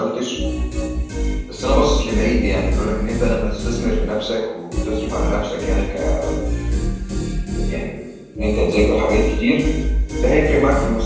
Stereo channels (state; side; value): identical; both; correlation 1.00